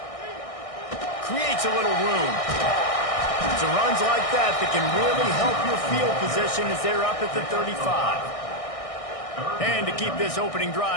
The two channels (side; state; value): right; late; 1.6 ms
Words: Creates a little room. It's runs like that that can really help your field position as they're up at the 35. And to keep this opening